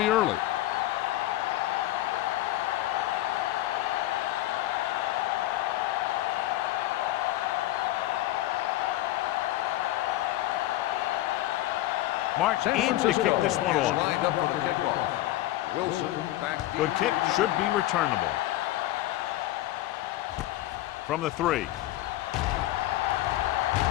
early. March in to kick this one off. Lined up for the kickoff. Wilson back. Good kick, should be returnable. From the 3.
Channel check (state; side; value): quieter; right; 15.8 dB